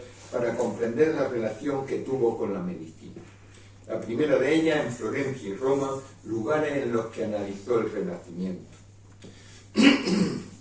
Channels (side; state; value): both; identical; correlation 1.00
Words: para comprender la relación que tuvo con la medicina. La primera de ellas en Florencia y Roma, lugares en los que analizó el Renacimiento.